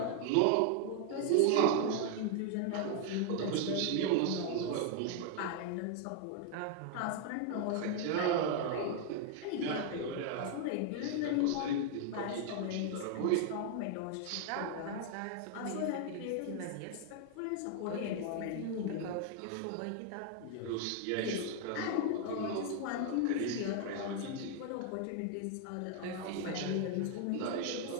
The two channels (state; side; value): different; both; correlation 0.00